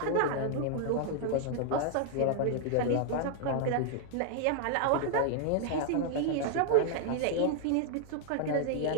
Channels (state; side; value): different; both; correlation 0.00